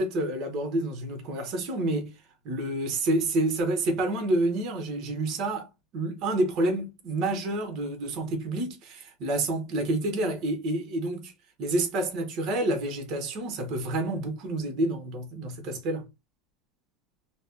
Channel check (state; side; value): normal; both; correlation 0.41